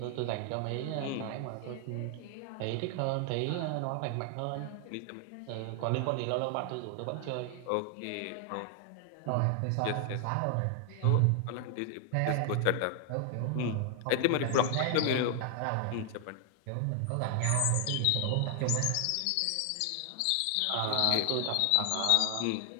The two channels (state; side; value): different; both; correlation 0.00